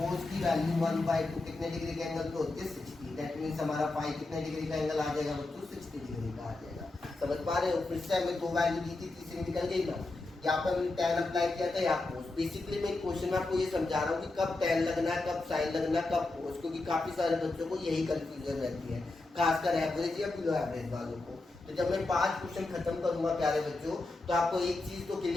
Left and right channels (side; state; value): right; quieter; 3.1 dB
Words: की वैल्यू 1/2 कितने डिग्री के एंगल पे होती है 60। दैट मींस हमारा फाई कितने डिग्री का एंगल आ जाएगा बच्चों 60 डिग्री का आ जाएगा। समझ पा रहे हो, फिर से हमें दो वैल्यू दी थी, तीसरी निकल गई ना, यहाँ पर मैंने tan अप्लाई किया था, यहाँ कोस। बेसिकली मैं क्वेश्चन में आपको ये समझा रहा हूँ कि कब tan लगना है, कब साइन लगना है, कब कोस, क्योंकि काफी सारे बच्चों को यही कंफ्यूजन रहती है, खासकर एवरेज या बिलो एवरेज वालों को। तो जब मैं 5 क्वेश्चन खत्म करूंगा प्यारे बच्चों, तो आपको एक चीज तो